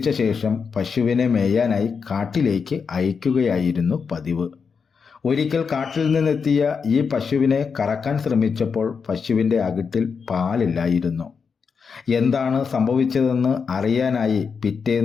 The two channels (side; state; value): right; quieter; 5.8 dB